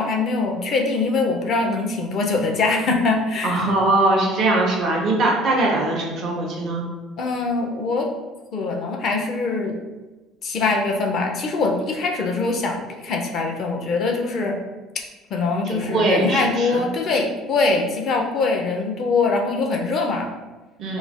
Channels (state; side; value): normal; both; correlation 0.50